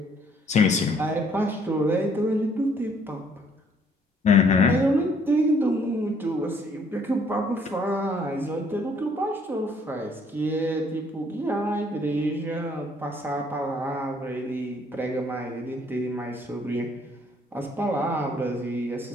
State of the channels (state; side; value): normal; both; correlation 0.64